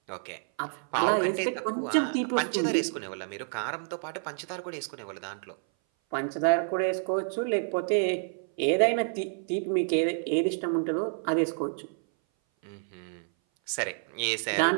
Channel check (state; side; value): silent; left; 57 dB below the other